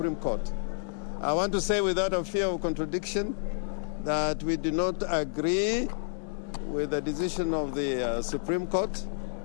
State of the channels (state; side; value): silent; right; digital silence